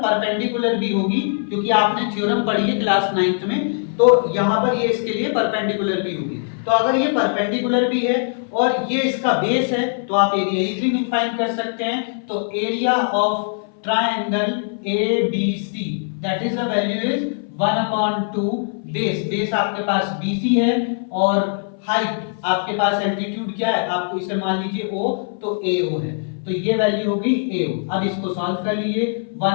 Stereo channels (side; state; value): right; silent; 59 dB below the other